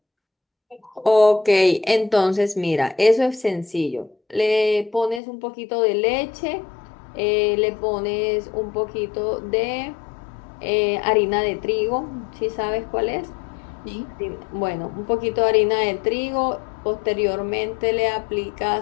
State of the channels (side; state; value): right; drops out; at 5.2 s